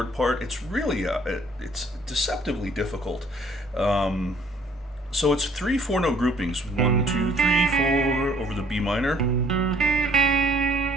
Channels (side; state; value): both; normal; correlation 0.59